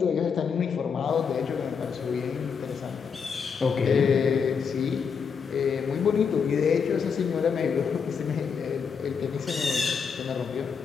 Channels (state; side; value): quieter; right; 6.2 dB